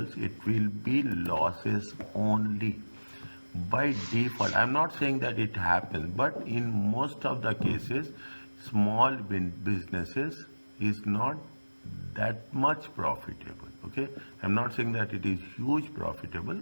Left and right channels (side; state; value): both; inverted; correlation -1.00